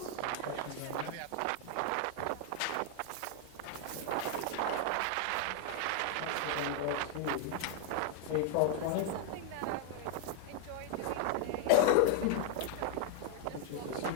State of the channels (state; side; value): different; both; correlation 0.00